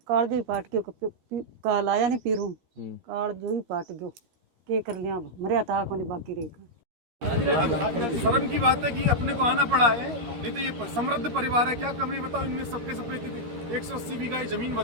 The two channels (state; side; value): late; left; 13 ms